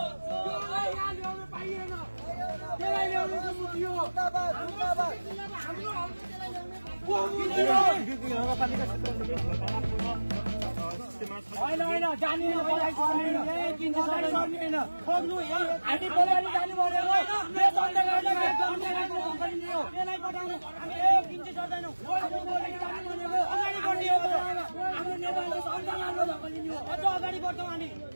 त्यसलाई यहाँ ल्याउनु पाइएन त्यसलाई ल्याउनु त मुद्यो होइन जाने खोज्नु हामी बोलाइले जानु पर्यो त्यसलाई पठाउनु हामी किन्चे सक्दैनौँ अगाडि बढ्ने हो हाम्रो नेपालले संविधान धक्कलिने हो अझ अगाडि बढ्छौँ हामी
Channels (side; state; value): both; inverted; correlation -1.00